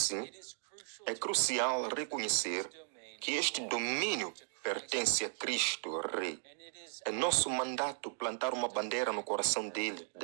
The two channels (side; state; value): left; silent; digital silence